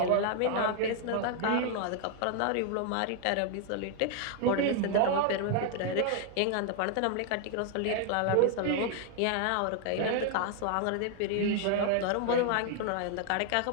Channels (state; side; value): different; both; correlation 0.00